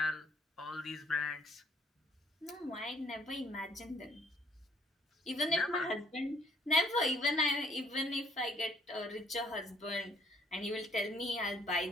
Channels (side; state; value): both; normal; correlation 0.64